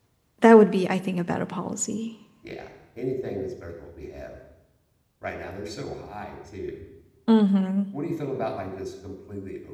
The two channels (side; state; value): both; identical; correlation 1.00